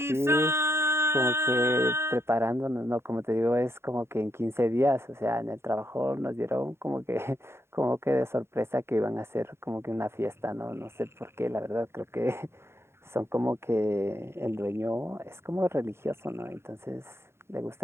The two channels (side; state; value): left; late; 0.12 ms